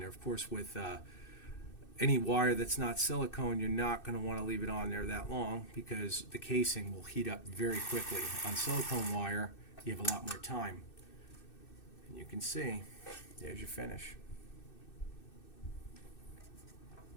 Of course, with any wire that's not silicone, you're not going to want to leave it on there that long because the casing will heat up very quickly. On silicone wire, you have a lot more time. And you can see, there's your finish.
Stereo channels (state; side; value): late; right; 2.6 ms